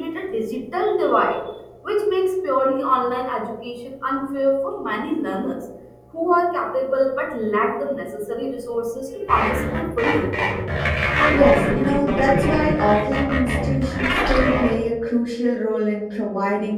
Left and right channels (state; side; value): identical; both; correlation 1.00